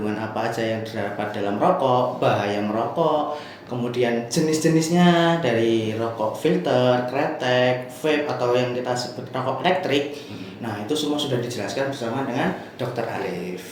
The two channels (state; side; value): identical; both; correlation 1.00